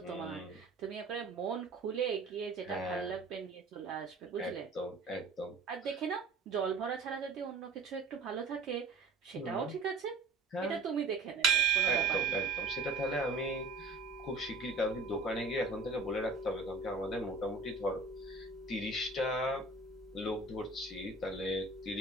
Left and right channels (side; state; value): left; quieter; 3.4 dB